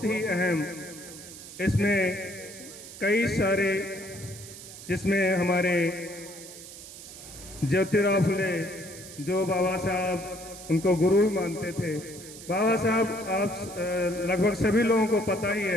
ही अहम। इसमें कई सारे, जिसमें हमारे ज्योतिराव फुले जो बाबा साहब उनको गुरु ही मानते थे। बाबा साहब आप लगभग सभी लोगों को पता ही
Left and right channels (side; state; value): right; noise; hiss, 15 dB below the sound